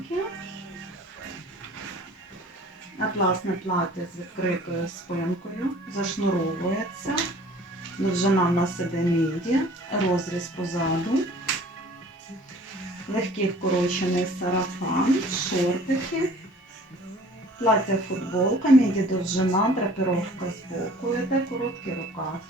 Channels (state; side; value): normal; both; correlation 0.50